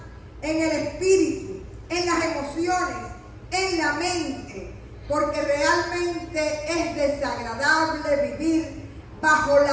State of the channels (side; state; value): both; identical; correlation 1.00